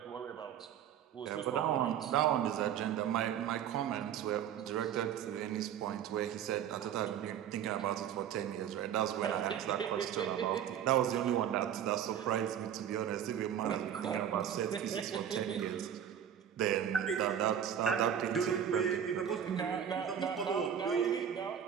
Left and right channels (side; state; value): left; quieter; 9.2 dB